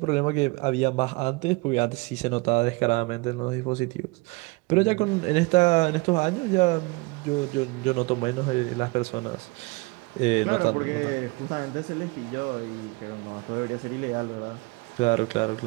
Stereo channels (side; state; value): left; quieter; 26.1 dB